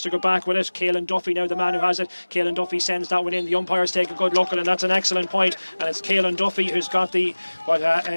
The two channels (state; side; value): inverted; both; correlation -1.00